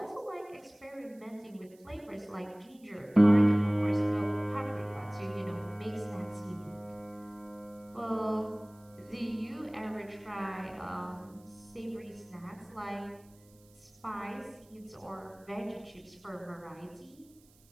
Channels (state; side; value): noise; right; hiss, 29 dB below the sound